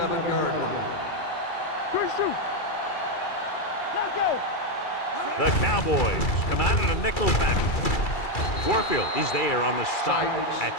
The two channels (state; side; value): late; right; 2.3 ms